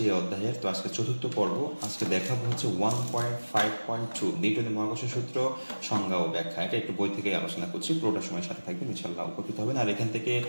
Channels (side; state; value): both; inverted; correlation -1.00